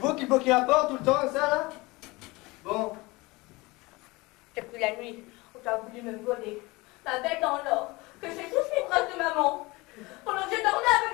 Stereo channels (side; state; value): right; quieter; 23.1 dB